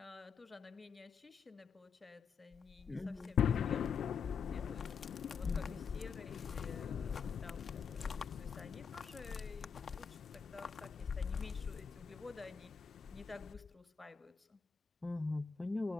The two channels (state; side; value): quieter; right; 6.2 dB